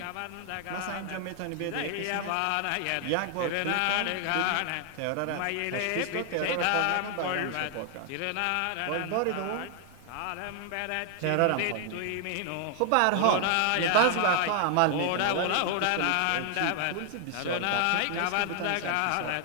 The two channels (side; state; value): both; different; correlation 0.00